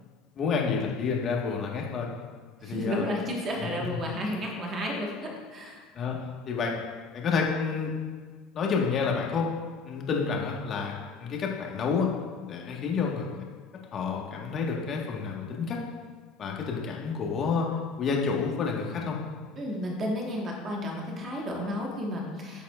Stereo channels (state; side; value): quieter; right; 4.0 dB